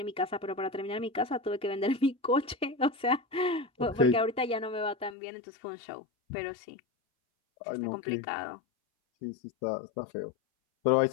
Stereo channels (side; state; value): right; drops out; at 5.2 s